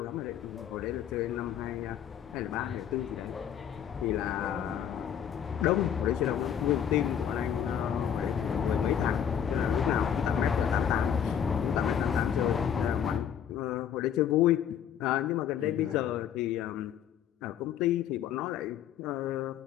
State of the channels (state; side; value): quieter; right; 9.0 dB